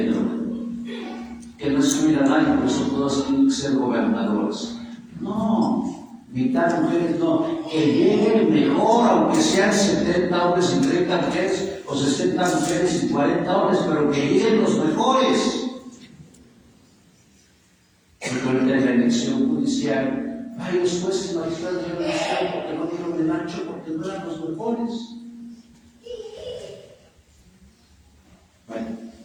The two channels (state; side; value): identical; both; correlation 1.00